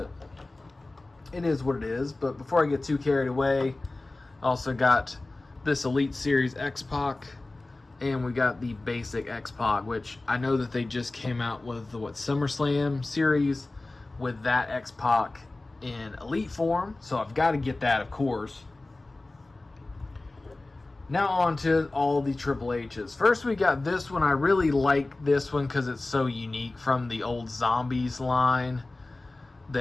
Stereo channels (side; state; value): right; quieter; 3.0 dB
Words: it is what it is. But before I get too carried away, I also got this Elite Series X-Pac, and we got the basic X-Pac, which I know that they just came out with the SummerSlam series with that X-Pac in Elite form, so I've got to get that, of course. Now on to all the Triple H's. First, we got this one. I really like this one because it's so unique from the old Zombies line